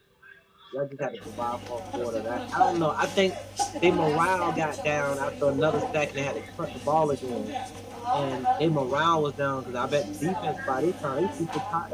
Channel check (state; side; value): identical; both; correlation 1.00